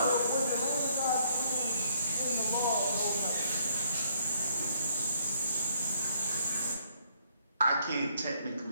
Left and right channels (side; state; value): both; inverted; correlation -0.68